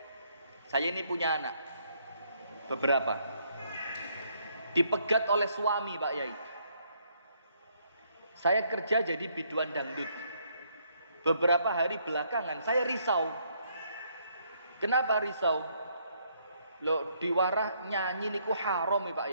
saya ini punya anak, beberapa. Dipegat oleh suami Pak Yai. Saya kerja jadi biduan dangdut. Beberapa hari belakangan saya risau. Kenapa risau? Loh diwarah nyanyi niku haram ya Pak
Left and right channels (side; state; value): both; inverted; correlation -0.71